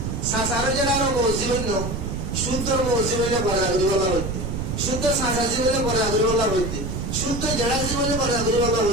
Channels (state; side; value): noise; right; rumble, 4 dB below the sound